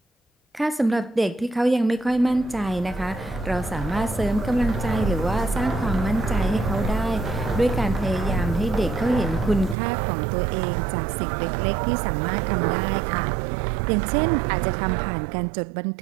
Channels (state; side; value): drops out; left; at 9.8 s